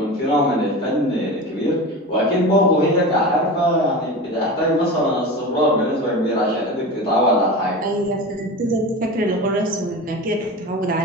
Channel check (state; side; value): normal; both; correlation 0.29